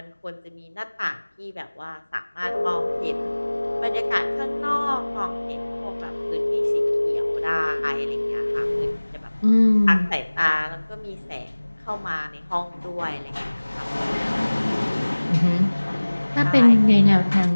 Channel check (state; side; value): inverted; both; correlation -1.00